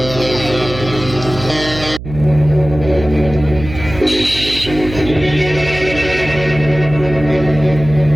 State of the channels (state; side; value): noise; right; hum, 11 dB below the sound